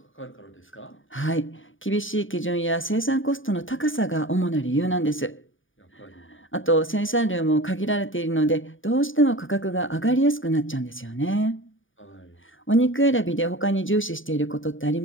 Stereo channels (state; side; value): late; right; 0.57 ms